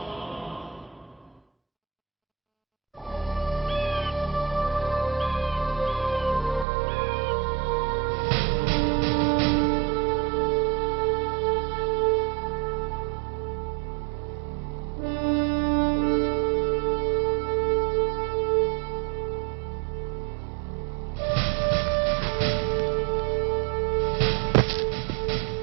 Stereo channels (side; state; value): left; drops out; at 6.7 s